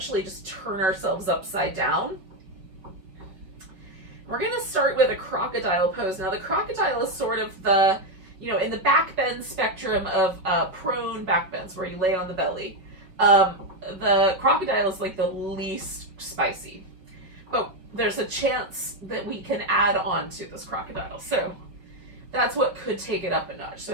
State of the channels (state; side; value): late; left; 5.2 ms